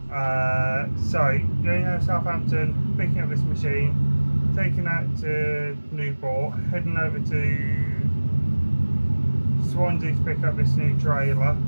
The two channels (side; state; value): both; inverted; correlation -1.00